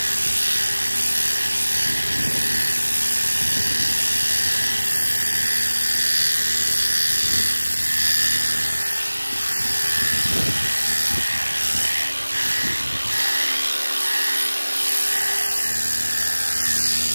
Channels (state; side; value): inverted; both; correlation -1.00